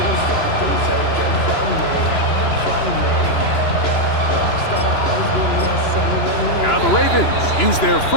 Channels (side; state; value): right; late; 2.9 ms